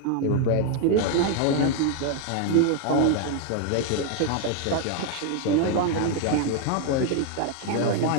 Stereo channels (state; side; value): different; both; correlation 0.00